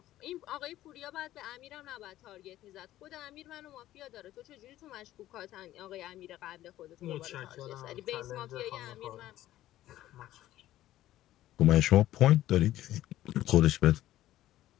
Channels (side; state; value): right; quieter; 14.2 dB